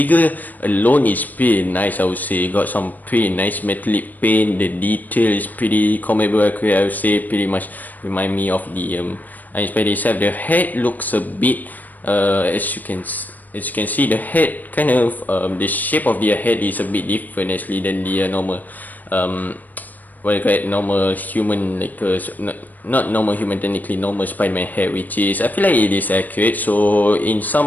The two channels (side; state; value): right; late; 0.084 ms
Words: alone is pretty nice, I would say. Got some pretty nice metallic paint. The detail is pretty comic book accurate, I would say. Pretty much remind me of the Iron Spider itself. The head looks a bit, as you can see, the head kind of the shape of the head is a bit different actually than the normal what you call it, normal human, like not normal human, technically normal Spider-Man head, which is, I feel like it is accurate. So in